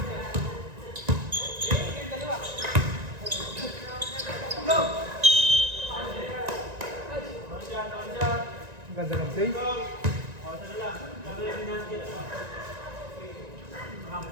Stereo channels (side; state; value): left; late; 1.9 ms